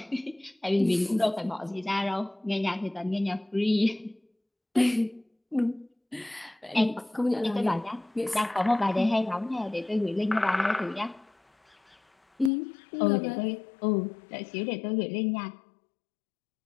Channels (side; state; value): right; drops out; at 12.5 s